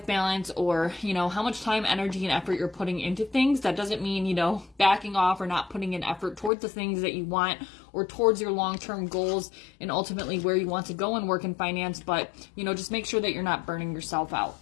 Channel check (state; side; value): drops out; right; at 6.5 s